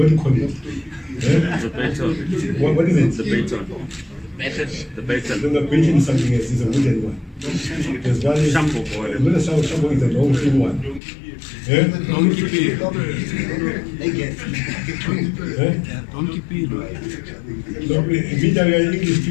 do you call it? The baton. What is it? The baton. The baton. No, baton is something else. It's a wooden one. There's one is Shambo boy. Not a shambo is a long thin one. Donkey pig. Donkey pig. Immediately English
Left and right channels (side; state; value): right; drops out; at 11.0 s